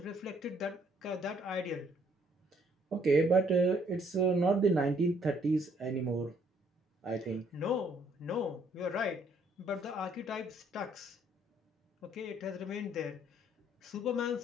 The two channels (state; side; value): normal; both; correlation 0.66